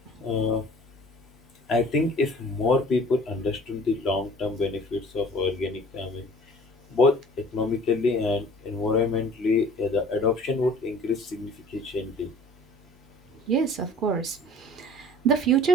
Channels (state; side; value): normal; both; correlation 0.49